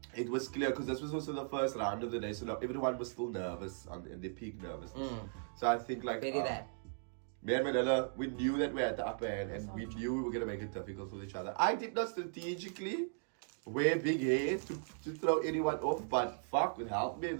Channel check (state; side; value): silent; left; digital silence